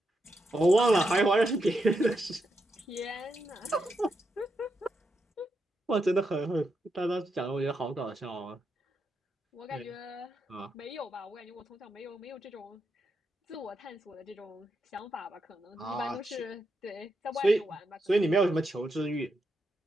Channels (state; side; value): normal; both; correlation 0.83